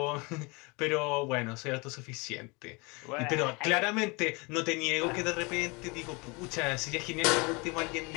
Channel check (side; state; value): right; quieter; 28.0 dB